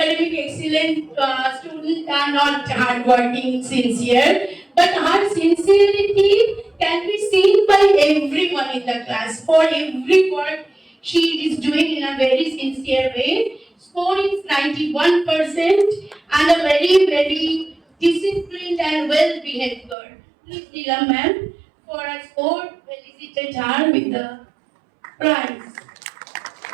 excellent students are not hardworking, sincere, but her sincerity can be seen by everyone in the class. For every work she is doing in a very sincere way. Score is 91% and a very, very disciplined and well-behaved girl. Please, Neelam ma'am, for a score, felicitate her with the prize.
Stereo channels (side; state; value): left; drops out; at 20.0 s